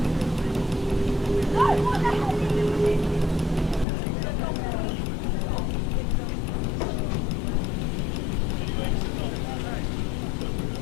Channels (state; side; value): drops out; right; at 3.9 s